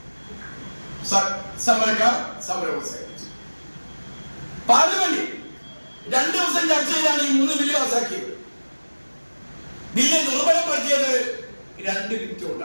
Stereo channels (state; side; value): inverted; both; correlation -1.00